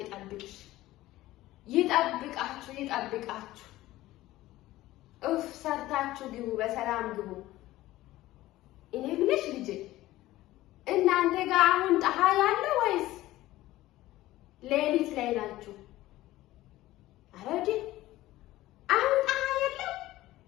ይጠብቅሽ። ይጠብቃችሁ ይጠብቃችሁ። እፍ ሰርታችሁ ግቡ፣ በሰላም ግቡ። እኔ ምንሽ ልጅ እናንተ ጋር አሁን ፀሐይ አለ ወይስ ሌሊት ላይ ናችሁ? አረዲ አሁን ፀሐይ የለም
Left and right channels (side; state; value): right; quieter; 16.4 dB